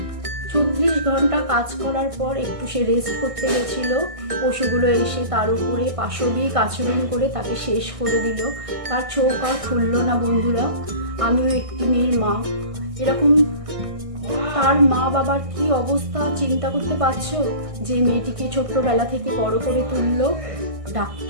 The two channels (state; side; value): late; left; 1.6 ms